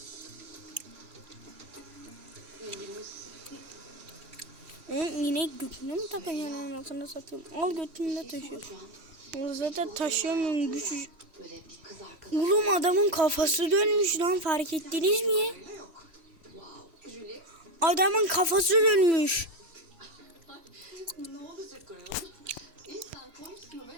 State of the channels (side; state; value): left; late; 3.1 ms